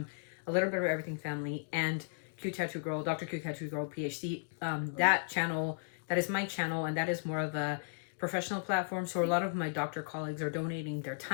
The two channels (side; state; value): right; silent; digital silence